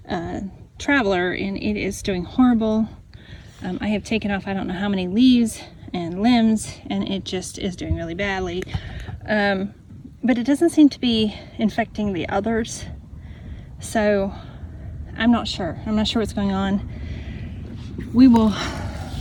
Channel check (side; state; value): both; identical; correlation 1.00